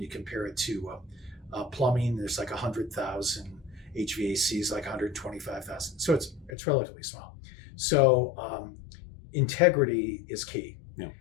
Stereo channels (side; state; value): right; drops out; at 6.5 s